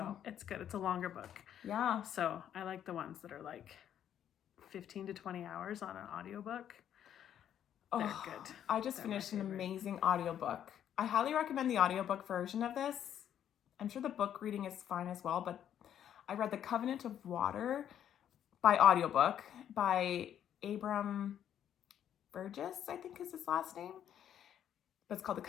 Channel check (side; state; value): right; quieter; 10.0 dB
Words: it's good. It's a longer book. Yeah. So I like the ones that are like 15 to 20 hours on an audiobook. They're good. I just finished an amazing audiobook. I highly recommend the audiobook version of this. I'm sure the book reading is fine as well, but I read The Covenant of Water by audiobook by Abram Burgess, I think is his last name. But it's called The